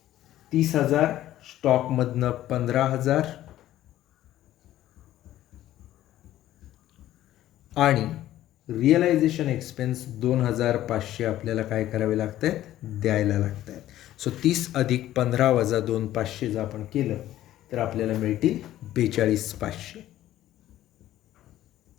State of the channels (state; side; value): quieter; right; 13.6 dB